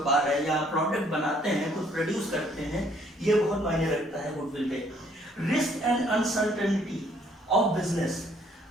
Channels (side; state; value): both; normal; correlation 0.64